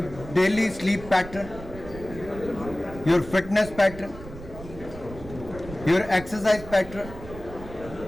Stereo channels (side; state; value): right; noise; rumble, 14 dB below the sound